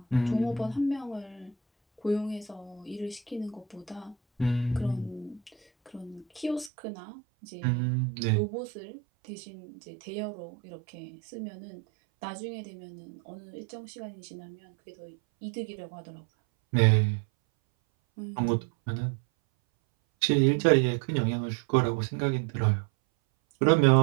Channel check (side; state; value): left; drops out; at 6.7 s